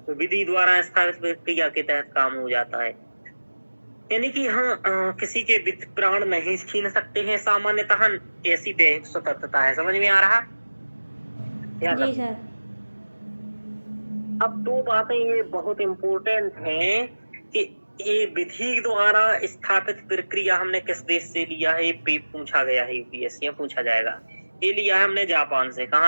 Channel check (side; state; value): both; inverted; correlation -1.00